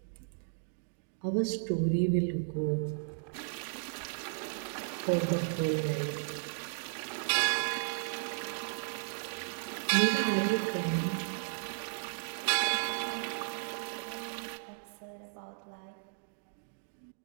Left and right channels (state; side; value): silent; left; digital silence